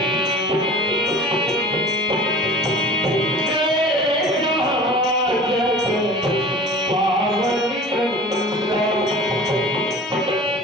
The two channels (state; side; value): normal; both; correlation 0.41